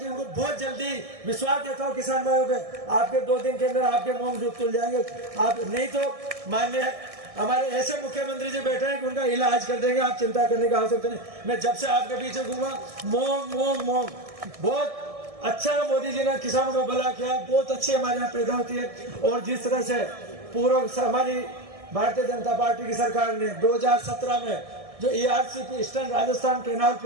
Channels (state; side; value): late; left; 1.6 ms